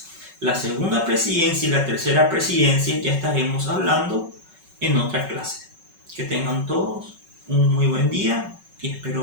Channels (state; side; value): late; left; 5.3 ms